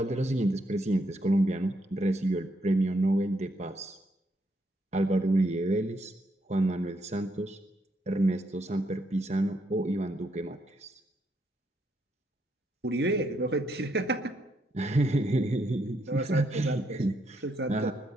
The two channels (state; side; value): normal; both; correlation 0.76